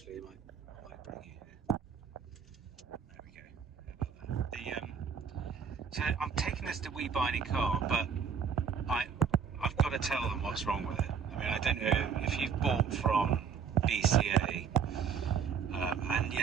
I might bring you here. There we go. How about that? So I'm taking this to We Buy Any Car, but I've got to tell them what's wrong with it. I mean, I don't know if you've bought from BCA, and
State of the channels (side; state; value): left; quieter; 6.7 dB